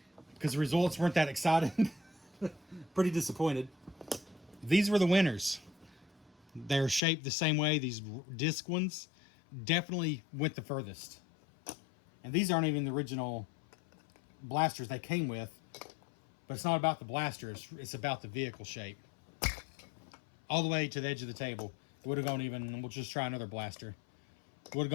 because the results weren't that exciting. Pretty disappointed. These were the winners. They're shaped the same way. These disc ones definitely went the furthest. And these aren't even the original blasters they came with. But it's not about the blasters. It's about the vehicle shape. All the way to the edge of the table. It would have gone even... We'll just try another blaster. Would have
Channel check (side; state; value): right; drops out; at 7.0 s